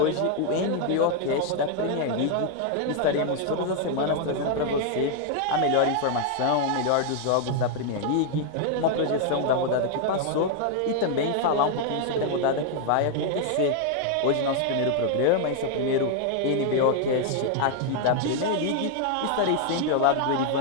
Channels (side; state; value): both; different; correlation 0.00